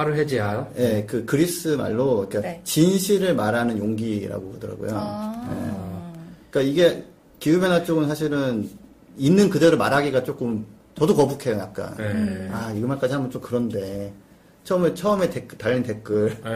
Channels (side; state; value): both; identical; correlation 1.00